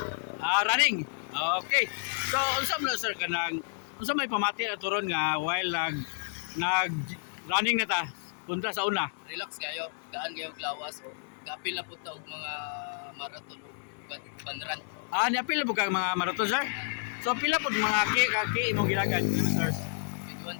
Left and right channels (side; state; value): right; silent; 57 dB below the other